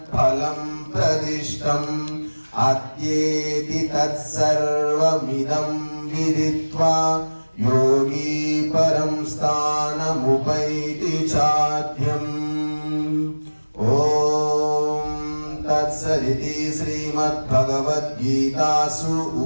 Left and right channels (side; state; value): both; inverted; correlation -1.00